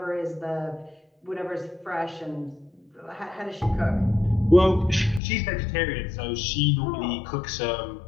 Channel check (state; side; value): drops out; right; at 5.2 s